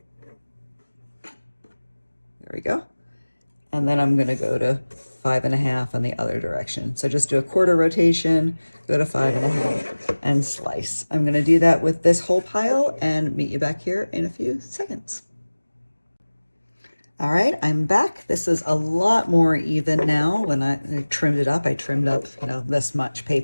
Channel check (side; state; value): both; inverted; correlation -1.00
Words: There we go. And then I'm going to go to 5.5 on the other direction. So just do a quarter rotation, go to 5.5 and slice. I'm going to do that with this whole pile and meet you back here in a few seconds. All right, I'm back. This is a lot more even now. When I trimmed it up, I trimmed up, this much